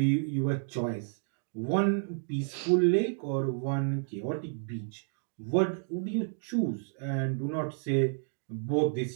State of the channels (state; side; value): silent; left; digital silence